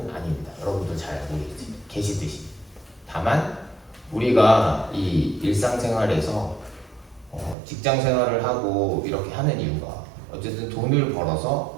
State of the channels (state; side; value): drops out; left; at 7.6 s